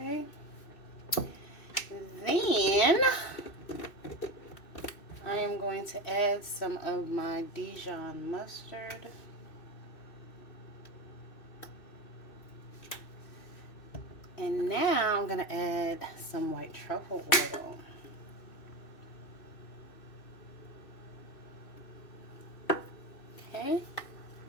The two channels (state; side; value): late; right; 2.6 ms